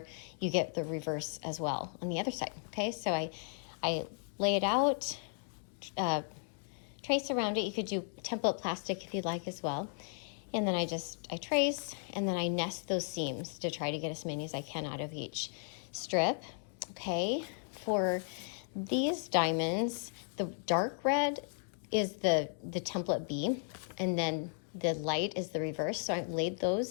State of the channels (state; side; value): silent; right; 54 dB below the other